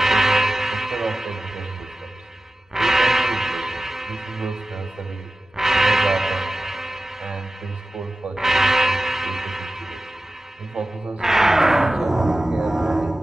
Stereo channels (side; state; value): both; normal; correlation 0.95